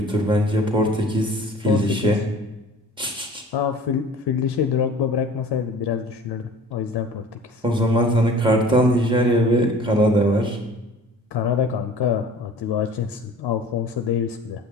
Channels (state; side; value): normal; both; correlation 0.46